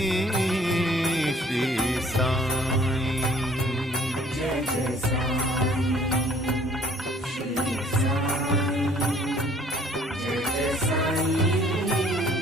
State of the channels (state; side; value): normal; both; correlation 0.57